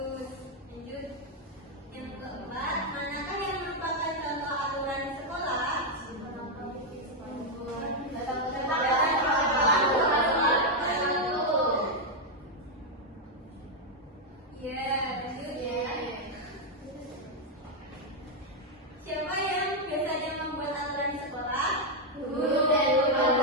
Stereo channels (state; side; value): normal; both; correlation 0.00